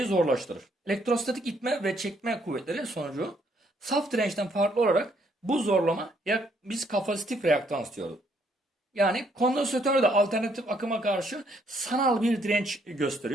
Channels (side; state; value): both; normal; correlation 0.70